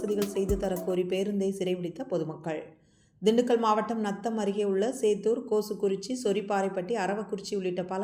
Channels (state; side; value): identical; both; correlation 1.00